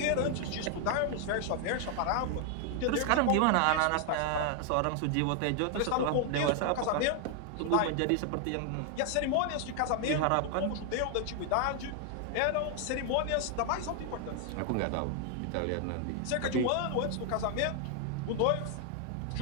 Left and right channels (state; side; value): different; both; correlation 0.00